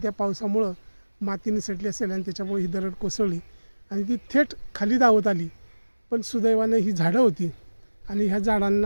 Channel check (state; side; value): inverted; both; correlation -1.00